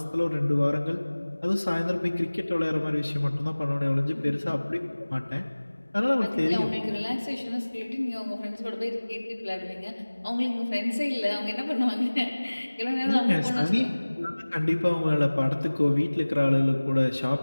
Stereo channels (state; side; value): inverted; both; correlation -1.00